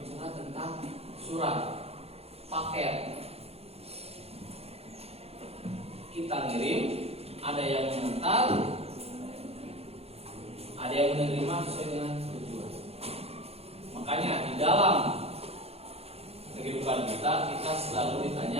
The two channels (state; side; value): late; left; 0.29 ms